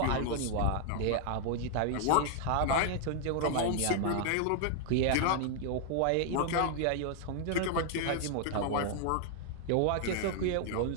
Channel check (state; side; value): different; both; correlation 0.00